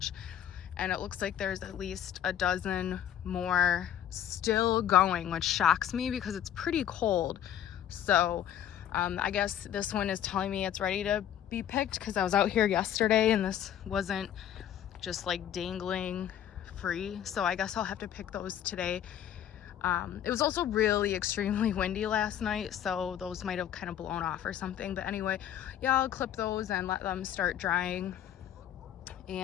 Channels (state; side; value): quieter; right; 10.5 dB